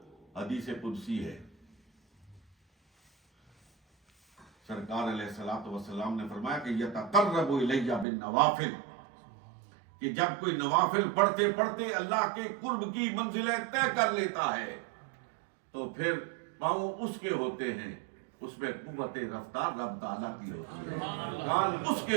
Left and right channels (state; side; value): drops out; left; at 8.1 s